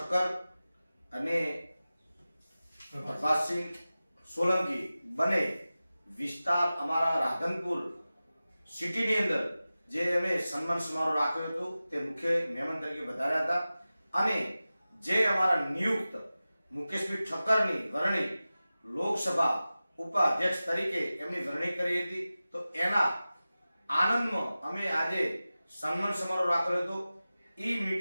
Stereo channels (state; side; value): inverted; both; correlation -0.96